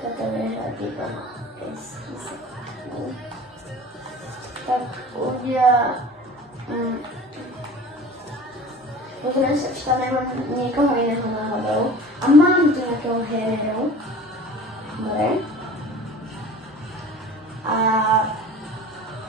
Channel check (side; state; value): both; normal; correlation 0.41